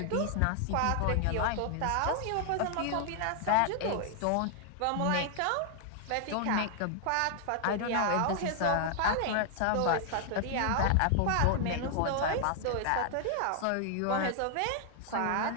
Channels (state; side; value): different; both; correlation 0.00